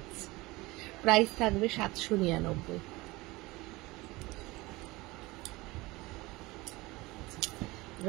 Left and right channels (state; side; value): quieter; left; 21.5 dB